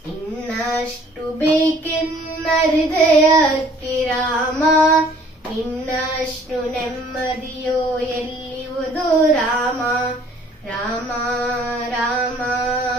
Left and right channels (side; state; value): both; normal; correlation 0.56